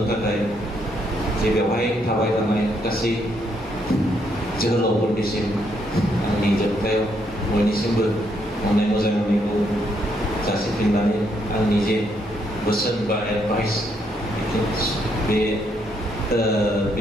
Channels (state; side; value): normal; both; correlation 0.74